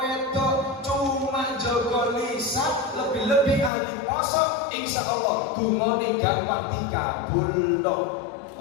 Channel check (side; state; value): right; drops out; at 3.7 s